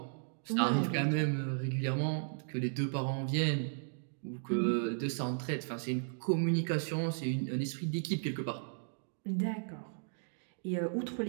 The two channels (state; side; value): silent; left; digital silence